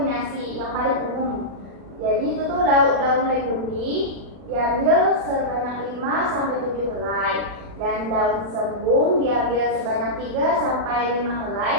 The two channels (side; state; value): left; late; 40 ms